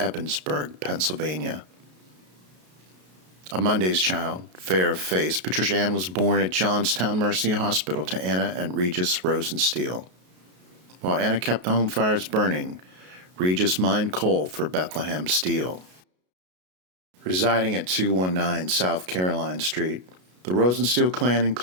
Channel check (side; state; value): left; late; 33 ms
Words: Pennsylvania. A Monday's child, fair of face, Patricia Ann was born at Johnstown Mercy Hospital to Anna and Regis Rosensteel. While Anna kept the home fires burning, Regis mined coal for Bethlehem Steel. Residing at 219 South Caroline Street, the Rosensteel clan